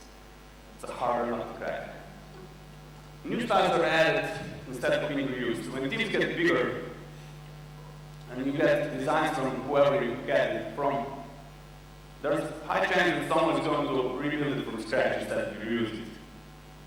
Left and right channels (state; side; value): identical; both; correlation 1.00